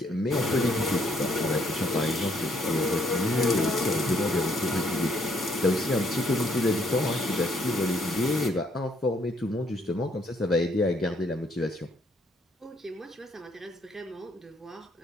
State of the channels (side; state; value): both; normal; correlation 0.68